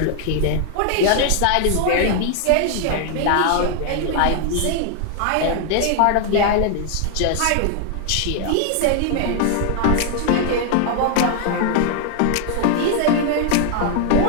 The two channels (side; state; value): both; different; correlation 0.00